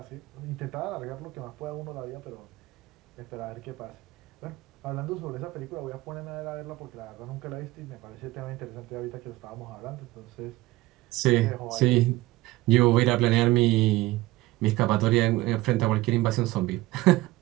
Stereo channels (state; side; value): quieter; left; 18.6 dB